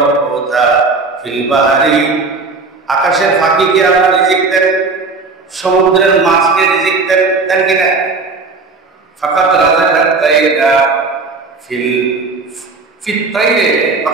হুতা ফিল বাহরি, আকাশের ফাঁকিকে আল্লাহ রিজিক দেন, সমুদ্রের মাছকে রিজিক দেন, দেন কিনা? ফাকাদ রাযাকাত তাইরা ফিল তাইরে,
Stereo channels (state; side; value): quieter; left; 4.1 dB